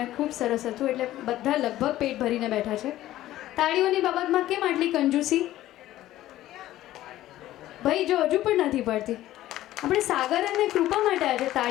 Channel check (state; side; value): quieter; right; 14.5 dB